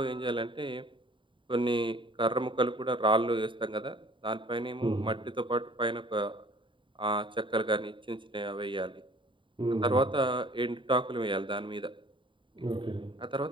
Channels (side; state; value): left; late; 0.24 ms